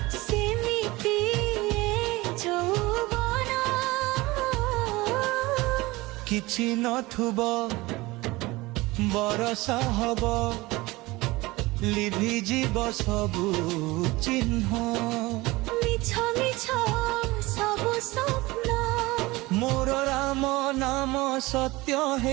सेमिति यौवन किछि नथुबो बरसा हबो लिभि जीव सबु चिन्ह मिछ मिछ सबु स्वप्न मोर राम नाम सत्य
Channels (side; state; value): left; quieter; 21.1 dB